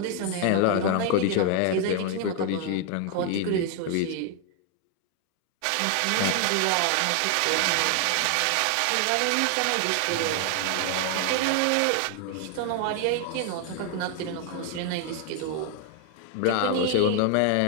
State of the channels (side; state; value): both; different; correlation 0.00